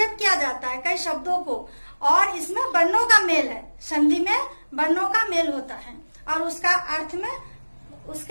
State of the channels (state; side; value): inverted; both; correlation -1.00